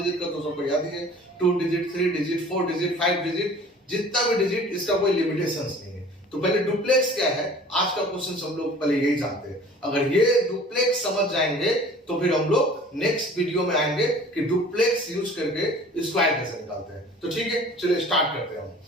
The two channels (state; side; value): normal; both; correlation 0.47